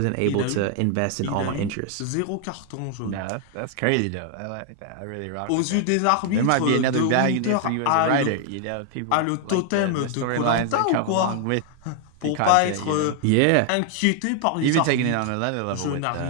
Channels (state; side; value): different; both; correlation 0.00